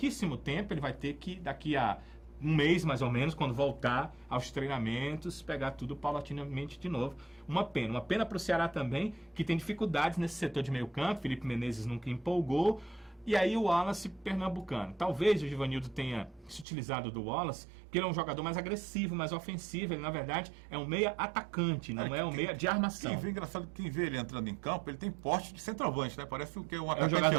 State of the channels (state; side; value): drops out; left; at 16.7 s